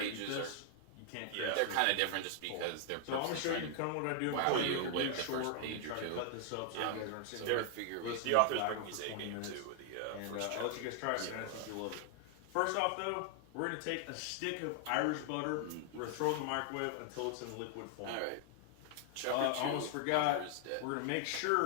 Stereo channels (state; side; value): different; both; correlation 0.00